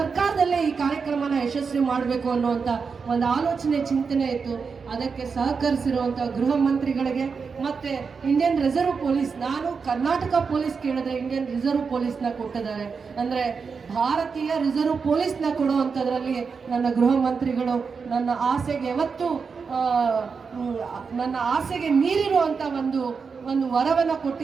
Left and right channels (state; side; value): quieter; left; 5.4 dB